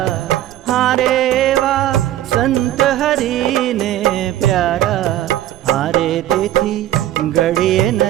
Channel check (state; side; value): quieter; left; 13.3 dB